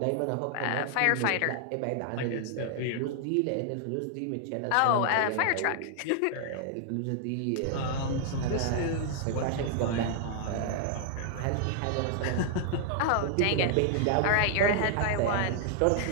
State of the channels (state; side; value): different; both; correlation 0.00